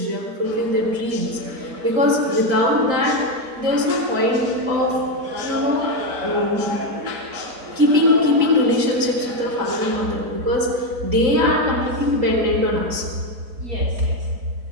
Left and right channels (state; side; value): late; left; 3.9 ms